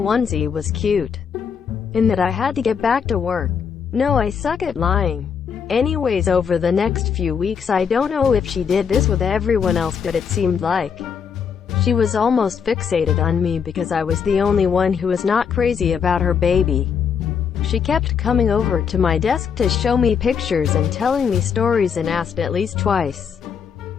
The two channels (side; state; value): right; quieter; 6.9 dB